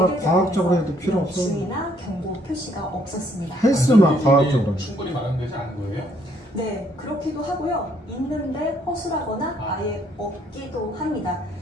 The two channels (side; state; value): both; normal; correlation 0.67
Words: 제품에서 주의나 경고 표시가 없었습니다. 헬스만 과학적으로 충분히 마련되지 않은 거예요? 네, 그렇기도 하고요. 있는데 허술하거나 아예 없기도 합니다.